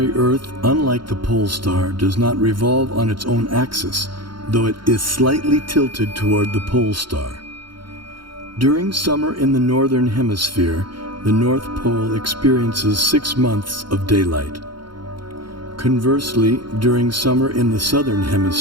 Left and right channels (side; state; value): left; late; 0.73 ms